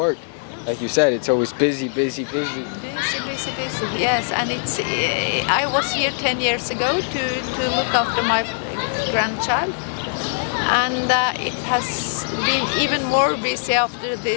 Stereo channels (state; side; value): silent; right; 65 dB below the other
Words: Like you said, it's always busy. Busy. Yes, and it's. I was here 10 years ago to look after my grandchild, and it has been even more busy after